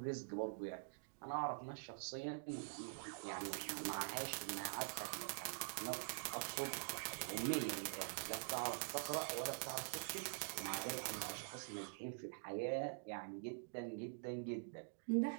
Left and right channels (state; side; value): silent; left; digital silence